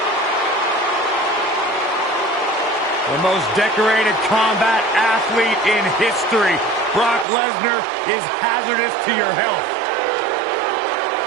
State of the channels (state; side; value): drops out; left; at 7.2 s